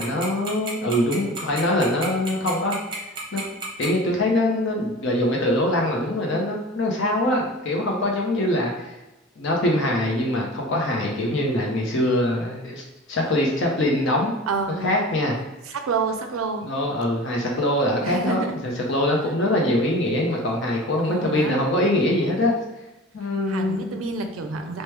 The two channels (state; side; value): normal; both; correlation 0.37